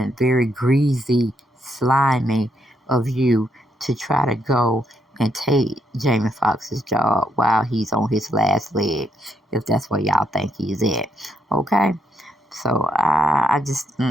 very greasy, slimy of you to try to go and take Jamie Foxx's job while he's on his last leg, if that's where y'all think he's at. Okay? So I just,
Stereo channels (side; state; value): both; normal; correlation 0.75